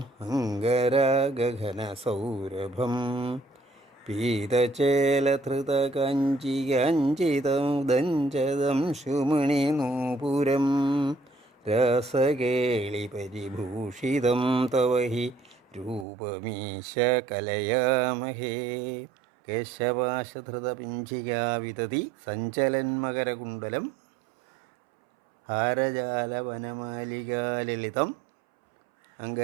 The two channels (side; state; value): left; drops out; at 16.1 s